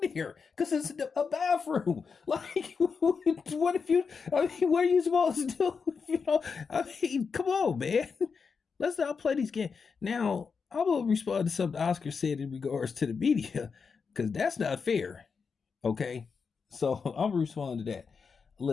here because it's a bathroom. Like, what if you, I mean, what are you supposed to do? You know, I mean, come on, man. Let's not play these games. Now, I will respond to something Oscar said in regards to the media because that's not fair. Okay. So I'm responding to that.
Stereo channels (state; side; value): quieter; right; 5.5 dB